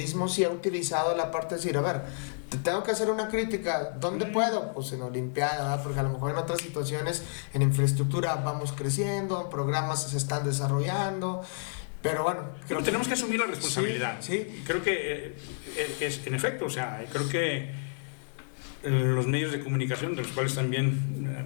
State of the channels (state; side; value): silent; right; digital silence